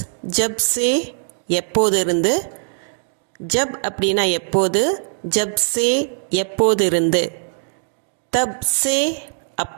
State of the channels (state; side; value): silent; left; digital silence